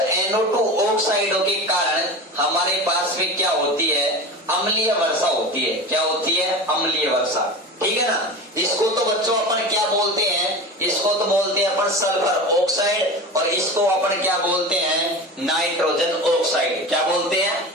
NO2 ऑक्साइडों के कारण हमारे पास में क्या होती है? अम्लीय वर्षा होती है। क्या होती है? अम्लीय वर्षा। ठीक है ना। इसको तो बच्चों अपन क्या बोलते हैं? इसको तो बोलते हैं अपन सल्फर ऑक्साइड, और इसको अपन क्या बोलते हैं? Nitrogen oxide. क्या बोलते हैं?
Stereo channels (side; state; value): both; normal; correlation 0.30